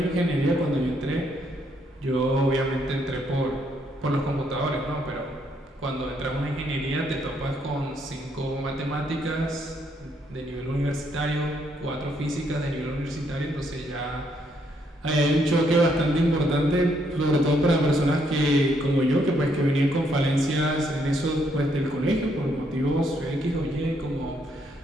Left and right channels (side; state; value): both; normal; correlation 0.73